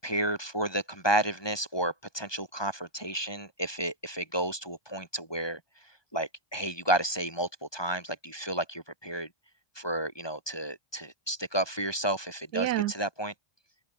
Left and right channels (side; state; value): right; late; 1.2 ms